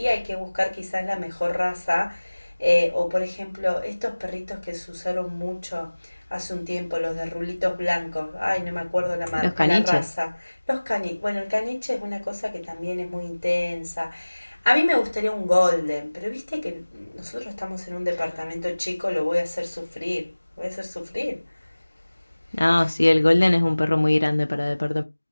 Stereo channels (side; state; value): both; inverted; correlation -1.00